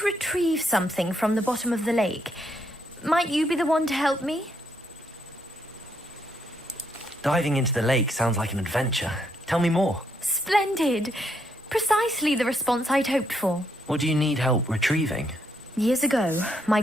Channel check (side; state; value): both; normal; correlation 0.75